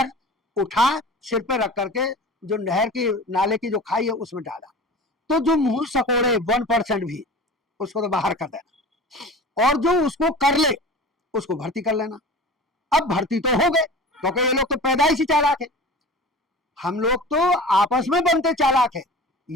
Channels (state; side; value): normal; both; correlation 0.37